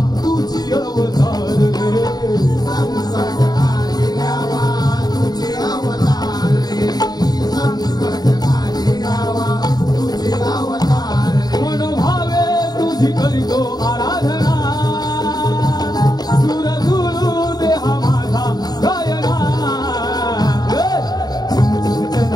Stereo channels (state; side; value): late; right; 0.19 ms